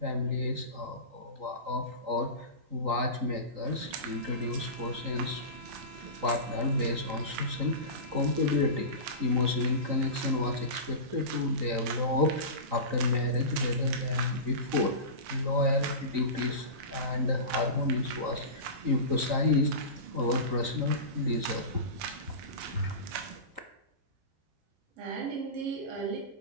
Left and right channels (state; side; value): late; left; 3.8 ms